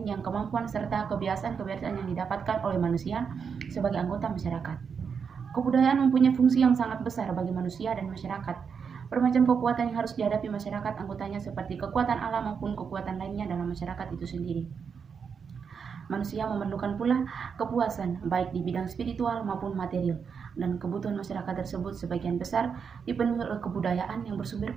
yang kemampuan serta kebiasaan-kebiasaan yang didapatkan oleh manusia sebagai anggota masyarakat. Kebudayaan mempunyai fungsi yang sangat besar bagi manusia dan masyarakat. Bermacam kekuatan yang harus dihadapi masyarakat anggotanya seperti kekuatan alam maupun kekuatan lainnya dalam masyarakat itu sendiri. Manusia memerlukan pula kepuasan baik di bidang spiritual maupun material, dan kebutuhan masyarakat tersebut sebagian besar dipenuhi oleh kebudayaan yang bersumber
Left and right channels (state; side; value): quieter; left; 6.3 dB